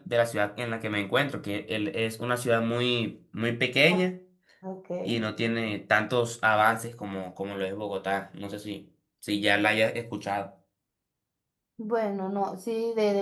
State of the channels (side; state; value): both; identical; correlation 1.00